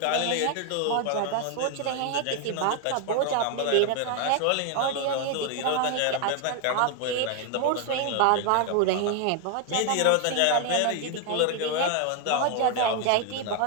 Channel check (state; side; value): different; both; correlation 0.01